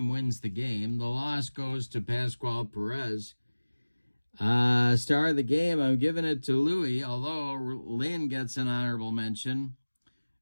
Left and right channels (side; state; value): both; inverted; correlation -1.00